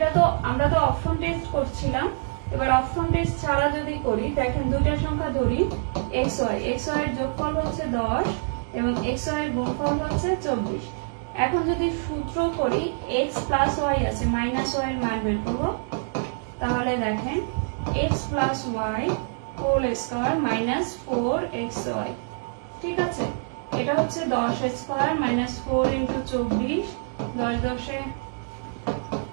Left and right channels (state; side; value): silent; left; digital silence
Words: তো আমরা তো অপশন টেস্ট করছিলাম, এবার অপশন টেস্ট ছাড়া যদি করি, দেখেন দুইটা সংখ্যা ধরি xy, xy এর যোগফল হচ্ছে 10 এবং xy এর গুণফল হচ্ছে 24। এখন যদি সূত্র করি x প্লাস y আছে, মাইনাস y এর মান বের করব, তাহলে দেখেন x plus y whole square minus 4xy। ঠিক আছে, এটা হচ্ছে 10 স্কয়ার মাইনাস 4 ইন্টু 24, 10 10 এ